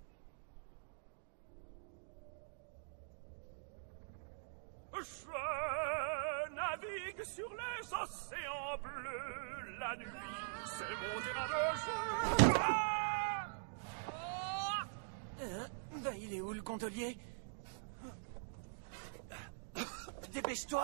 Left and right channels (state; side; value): silent; left; digital silence